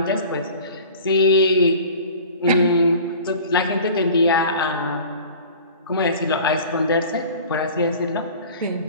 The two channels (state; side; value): inverted; both; correlation -0.42